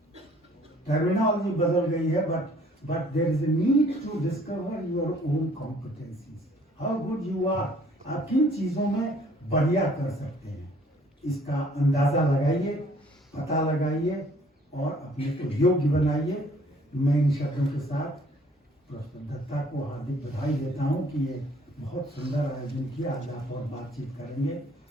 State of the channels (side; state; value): both; normal; correlation 0.59